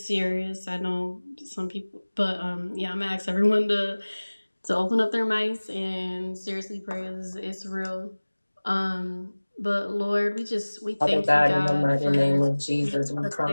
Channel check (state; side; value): inverted; both; correlation -1.00